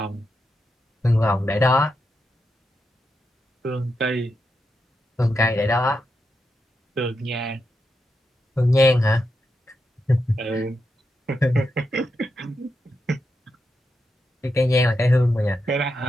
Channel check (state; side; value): normal; both; correlation 0.86